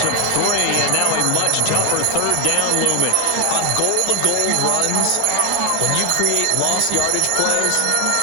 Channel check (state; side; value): different; both; correlation 0.00